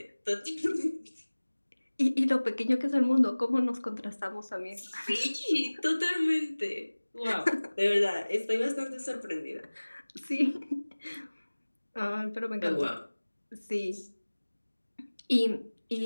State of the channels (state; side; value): inverted; both; correlation -1.00